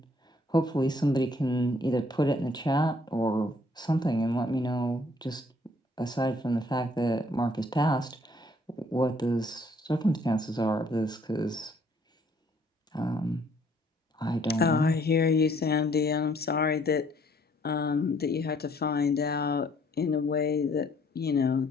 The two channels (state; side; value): normal; both; correlation 0.63